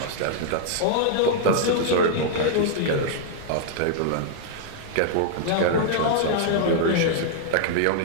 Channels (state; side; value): different; both; correlation -0.01